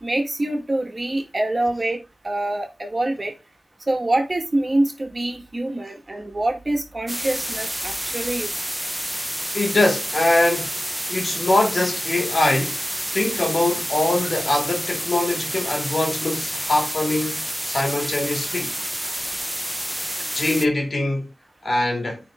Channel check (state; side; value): normal; both; correlation 0.95